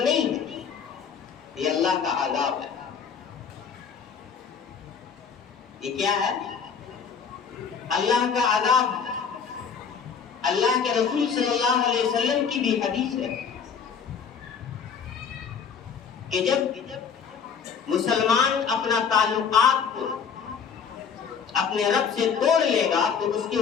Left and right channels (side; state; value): right; quieter; 6.6 dB